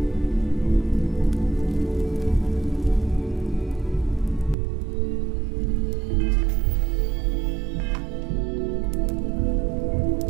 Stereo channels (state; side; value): drops out; left; at 4.5 s